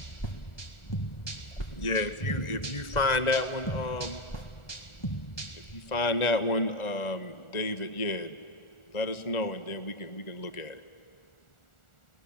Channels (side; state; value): right; late; 1.4 ms